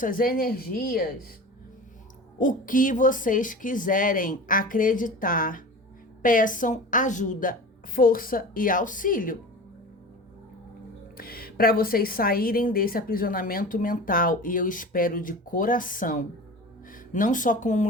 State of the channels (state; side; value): normal; both; correlation 0.35